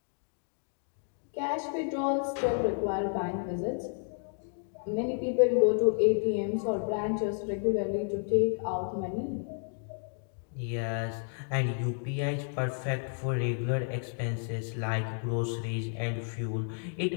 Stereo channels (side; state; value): right; silent; 57 dB below the other